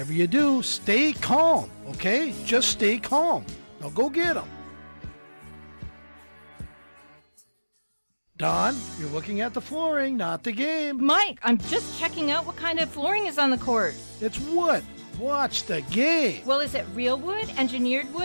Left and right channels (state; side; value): inverted; both; correlation -1.00